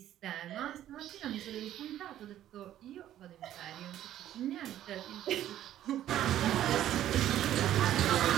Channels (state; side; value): quieter; left; 12.2 dB